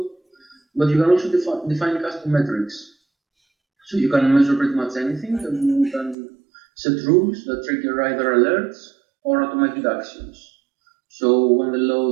But you can also define custom metrics. So you can measure pretty much anything, and you can set rules that trigger either alerts or automated actions. So when the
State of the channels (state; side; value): drops out; left; at 6.2 s